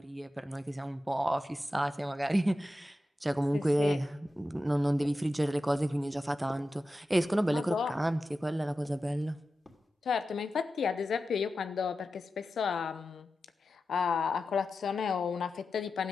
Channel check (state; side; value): normal; both; correlation 0.92